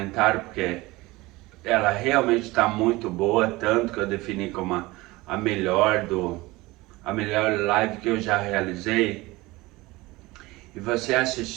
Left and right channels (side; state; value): left; quieter; 20.9 dB